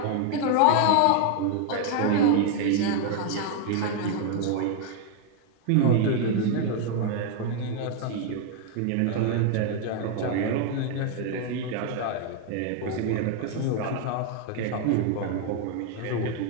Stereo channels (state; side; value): different; both; correlation 0.00